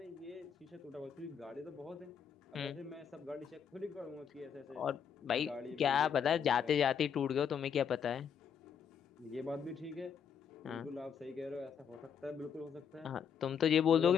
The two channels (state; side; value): quieter; right; 7.5 dB